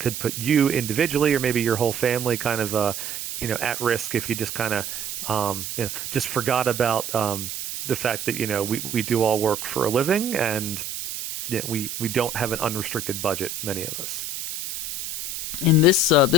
put you individually or maybe your whole family kind of at risk if you just kind of just forgot about the fact that we do all work for a living and we don't have an unrestricted budget, many of us. In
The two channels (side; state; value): right; noise; hiss, 6 dB below the sound